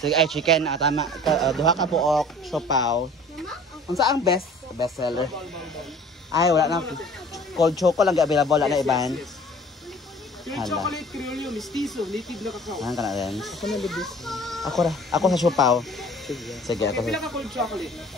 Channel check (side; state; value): both; normal; correlation 0.48